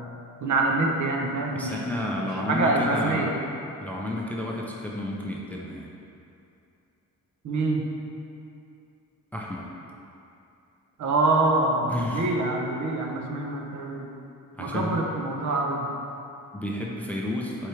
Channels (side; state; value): both; normal; correlation 0.30